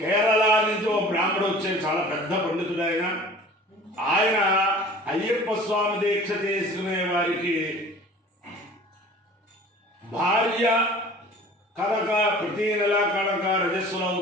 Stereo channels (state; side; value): normal; both; correlation 0.45